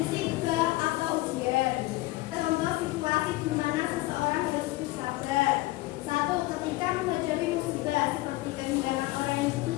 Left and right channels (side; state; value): right; quieter; 19.4 dB